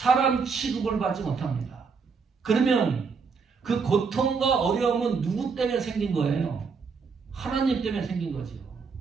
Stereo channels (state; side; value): quieter; left; 5.3 dB